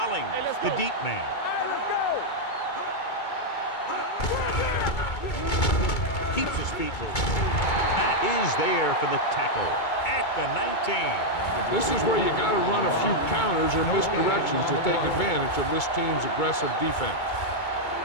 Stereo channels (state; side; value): late; right; 2.2 ms